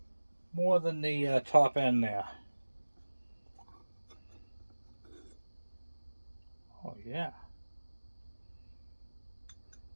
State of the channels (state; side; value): inverted; both; correlation -1.00